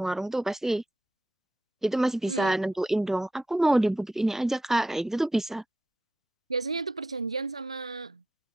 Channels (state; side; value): normal; both; correlation 0.83